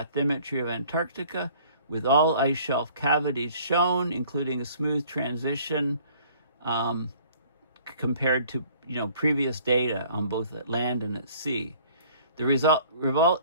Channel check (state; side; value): inverted; both; correlation -0.55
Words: of Antarctica with all ice shelf cavities shown, including a smooth transition compared to previous data on both at land and at sea. The